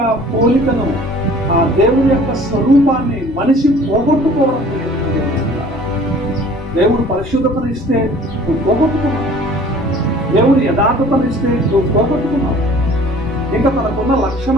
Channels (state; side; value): normal; both; correlation 0.50